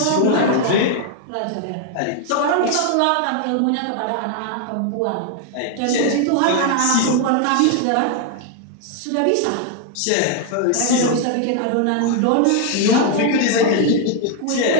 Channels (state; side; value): different; both; correlation 0.00